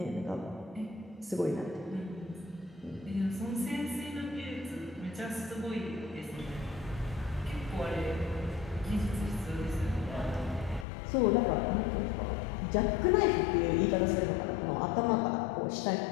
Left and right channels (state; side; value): drops out; right; at 10.9 s